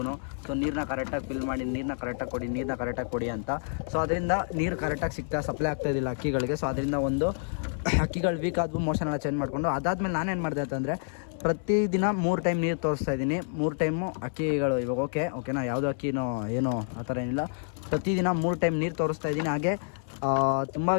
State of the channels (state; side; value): silent; right; 59 dB below the other